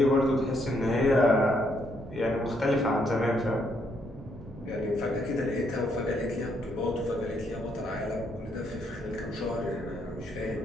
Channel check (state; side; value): normal; both; correlation 0.73